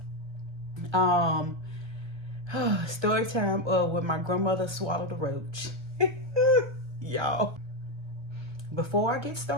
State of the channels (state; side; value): late; left; 1.3 ms